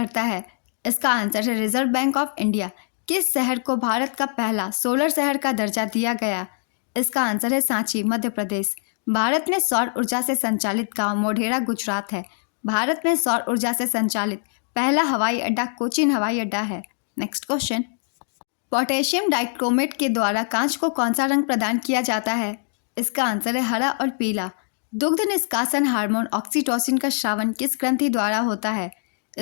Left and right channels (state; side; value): silent; right; digital silence